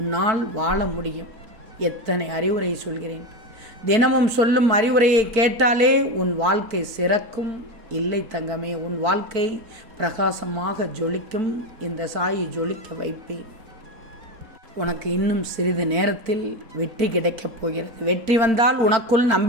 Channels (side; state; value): left; late; 4.5 ms